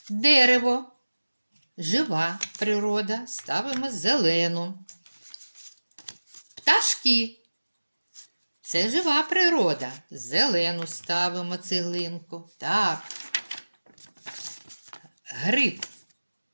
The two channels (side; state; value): both; inverted; correlation -1.00